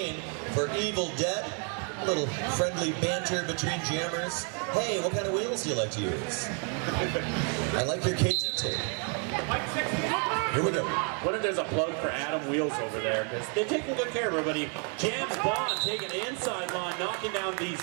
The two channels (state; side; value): quieter; left; 39.9 dB